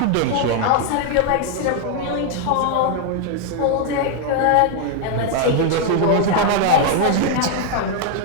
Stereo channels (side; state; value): both; different; correlation 0.00